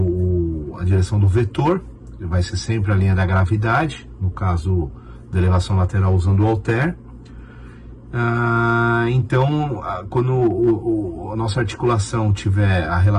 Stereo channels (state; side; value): identical; both; correlation 1.00